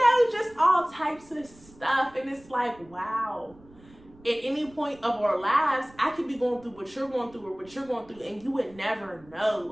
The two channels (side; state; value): right; noise; rumble, 25 dB below the sound